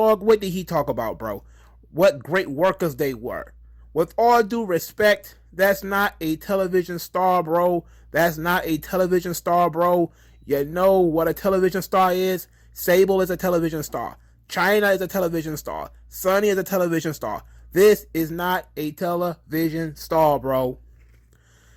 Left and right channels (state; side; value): identical; both; correlation 1.00